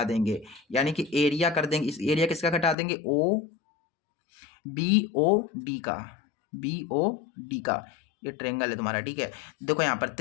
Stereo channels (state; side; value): drops out; right; at 2.8 s